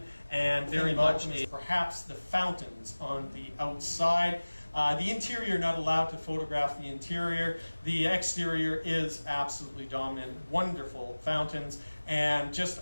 and very much perhaps the fountains on the outside. The interior, not allowed to photograph the interior. The exterior is absolutely dominant. Wonderful fountains, and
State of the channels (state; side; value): inverted; both; correlation -1.00